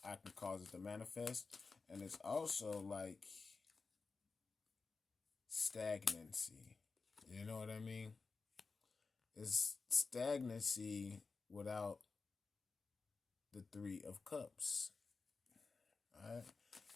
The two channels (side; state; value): right; quieter; 4.4 dB